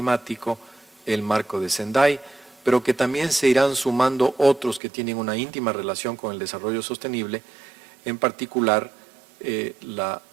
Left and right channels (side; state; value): left; drops out; at 4.8 s